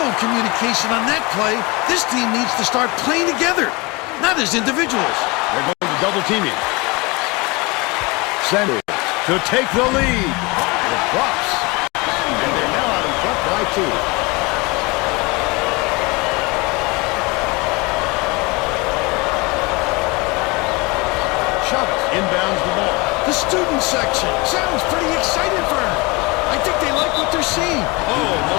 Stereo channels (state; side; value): quieter; right; 26.1 dB